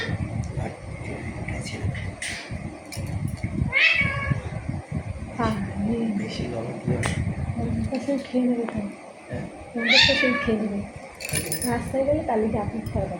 আর দুদিনকে ছেড়ে দাও। বেশি গরম দিও না। সেই খেয়ে নেবে তো, হ্যাঁ, সেই খেয়ে নেবে। রাস্তায় গেলে তাহলে কি আপনি খাওয়া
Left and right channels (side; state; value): both; identical; correlation 1.00